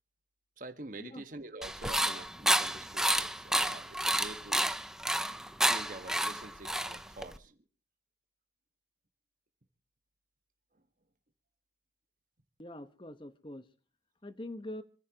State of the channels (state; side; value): normal; both; correlation 0.66